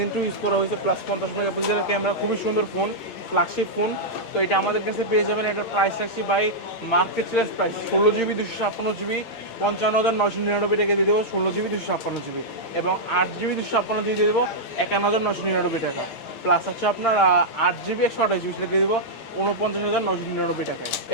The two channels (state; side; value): late; right; 8.7 ms